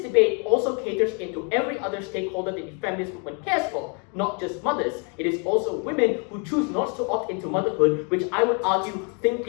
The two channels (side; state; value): right; quieter; 36.9 dB